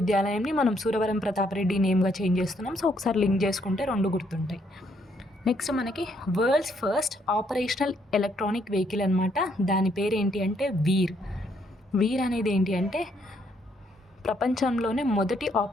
మనం సూరవరం ప్రతాపరెడ్డి నేమ్గా చేంజ్ చేస్తున్నాం. సో ఒకసారి లింక్ చేసుకుంటే 2 గుర్తుంటాయి. నెక్స్ట్ మనకి world's first operational electronic vehicle అనమాట. దాని పేరు ఏంటి అంటే వీర్ అనేది ఏంటి అంటే ప్రపంచంలోనే మొదటి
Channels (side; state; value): both; normal; correlation 0.71